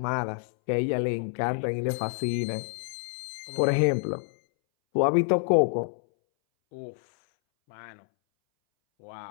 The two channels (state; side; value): silent; right; 60 dB below the other